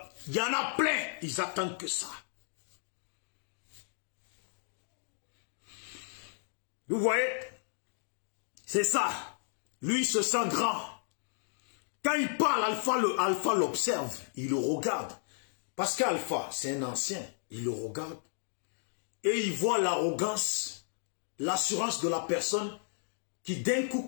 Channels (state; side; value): silent; right; digital silence